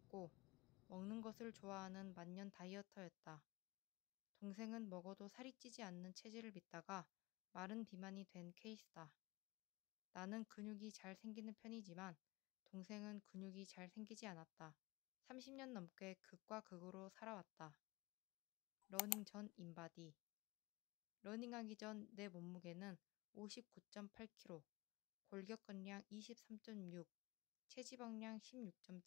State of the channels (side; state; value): right; quieter; 22.9 dB